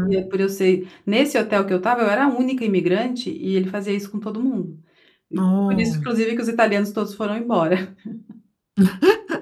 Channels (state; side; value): identical; both; correlation 1.00